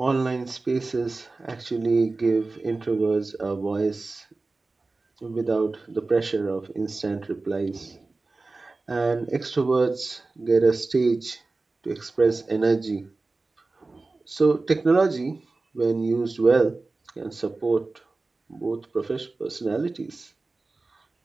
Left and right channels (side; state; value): left; quieter; 3.5 dB